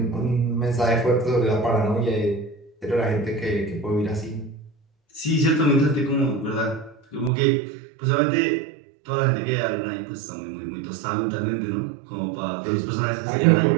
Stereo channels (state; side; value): drops out; left; at 7.3 s